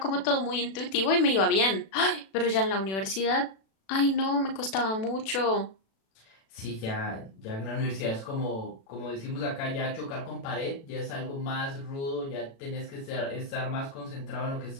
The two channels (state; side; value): late; right; 36 ms